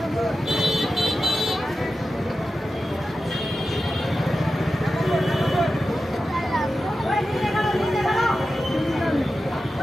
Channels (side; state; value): both; normal; correlation 0.92